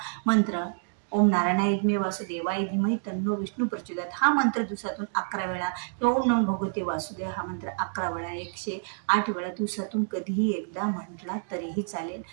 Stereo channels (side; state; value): left; silent; digital silence